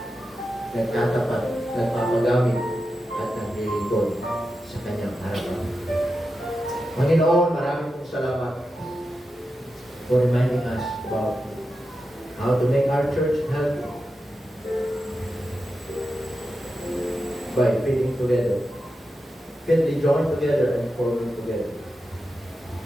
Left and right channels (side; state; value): both; normal; correlation 0.90